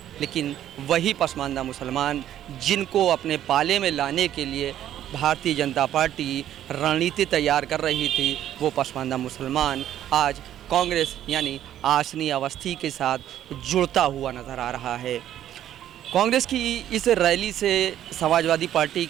लेकिन वही पसमानदा मुसलमान जिनको अपने पाले में लाने के लिए भारतीय जनता पार्टी रणनीति तैयार कर रही थी, वो पसमानदा मुसलमान आज कांग्रेस यानी आसनी अवस्थी के साथ जुड़ता हुआ नज़र आ रहा है। कांग्रेस की इस रैली से समाजवादी पार्टी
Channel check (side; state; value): left; quieter; 11.5 dB